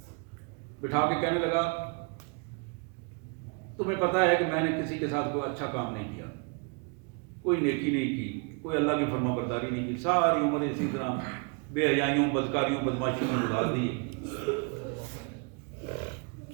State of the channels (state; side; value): quieter; left; 35.7 dB